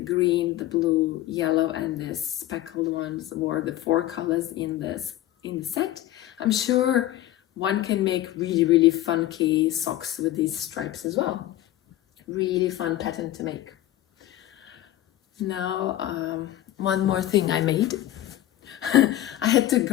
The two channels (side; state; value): right; quieter; 14.0 dB